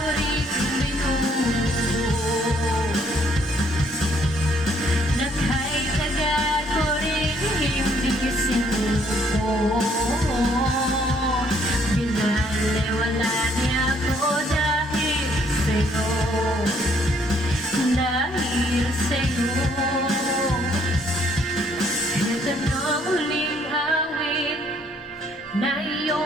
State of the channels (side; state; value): both; normal; correlation 0.66